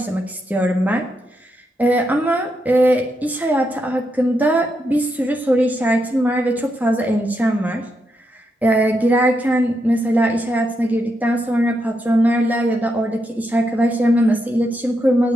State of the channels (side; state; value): both; normal; correlation 0.82